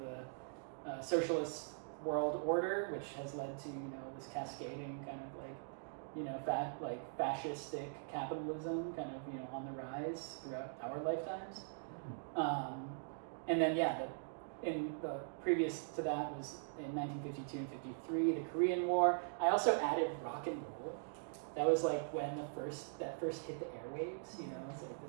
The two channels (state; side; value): silent; left; digital silence